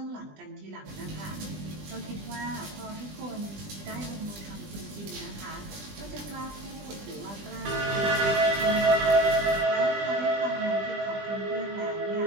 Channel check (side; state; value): left; late; 20 ms